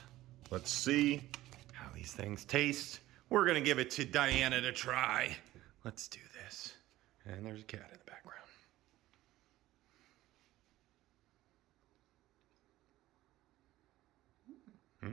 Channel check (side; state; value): left; quieter; 16.0 dB